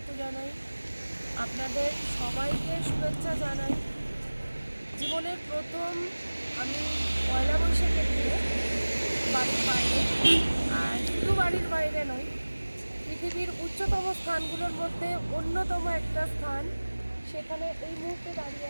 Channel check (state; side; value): inverted; both; correlation -1.00